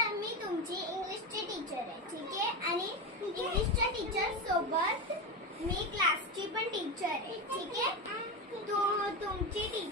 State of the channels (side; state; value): both; normal; correlation 0.17